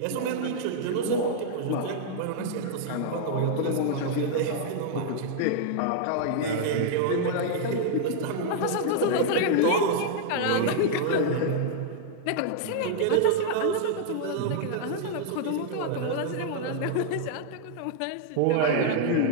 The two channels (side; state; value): both; different; correlation -0.01